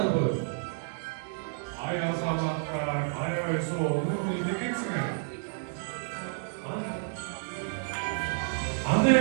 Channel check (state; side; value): silent; left; digital silence